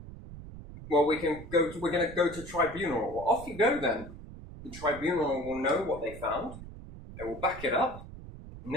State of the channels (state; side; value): noise; right; rumble, 14 dB below the sound